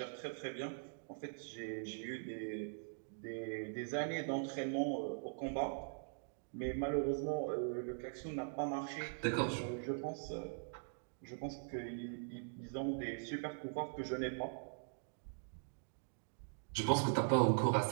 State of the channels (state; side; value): silent; left; digital silence